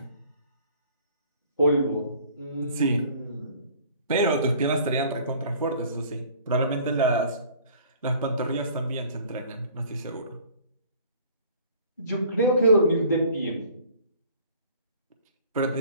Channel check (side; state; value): both; inverted; correlation -0.51